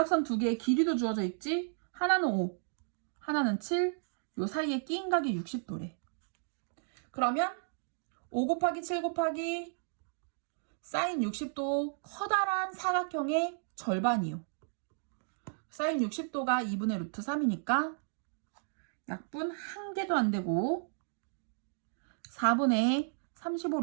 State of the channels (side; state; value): left; silent; digital silence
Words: 2개의 길이도 주어져 있지. 하나는 5, 하나는 7. 요 사이에 끼인 각이 60도래. 그러면 5 곱하기 7 곱하기 사인 60도 커다란 사각형의 절반이요. 사인 60도가 2분의 루트 3이니까 약분 1개도 안 되고 4분의 35